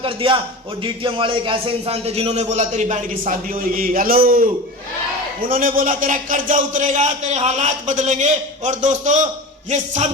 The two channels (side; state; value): both; normal; correlation 0.30